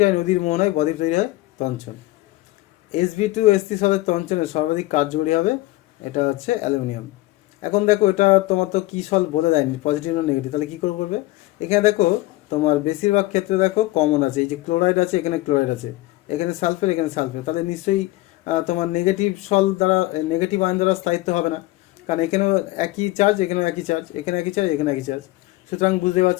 নদীর মোহনায় বদ্বীপ তৈরি হয়? তঞ্চন। Sb2 সলের তঞ্চনে সর্বাধিক কার্যকরী হবে? এটা হচ্ছে অ্যালুমিনিয়াম। এখন দেখো এটা তোমার তো কি সল বলে দেয়নি পজিটিভ না নেগেটিভ, তাহলে কী করে করবে? এখানে দেখো তোমার বেশিরভাগ ক্ষেত্রে দেখো কমন আছে, এই যে ক্লোরাইড আছে, এখানে ক্লোরাইড আছে, এখানে সালফেট, এখানে সালফেট, তাহলে নিশ্চয়ই তোমার নেগেটিভ সল দ্বারা নেগেটিভ আয়ন দ্বারা স্থায়িত্ব হবে না, কারণ এখানেও একই চার্জ, এখানেও একই চার্জ, এখানে একই চার্জ, এখানে একই চার্জ, সুতরাং বুঝতে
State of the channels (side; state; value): right; quieter; 18.5 dB